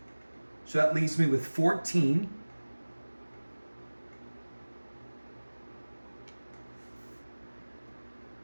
So that leaves me with 14.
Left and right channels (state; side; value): inverted; both; correlation -1.00